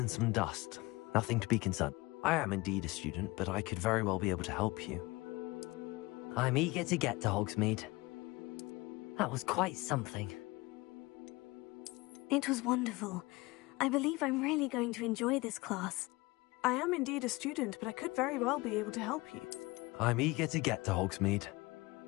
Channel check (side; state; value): right; quieter; 22.6 dB